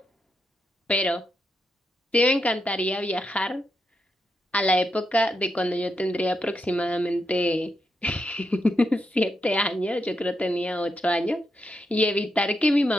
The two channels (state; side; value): normal; both; correlation 0.83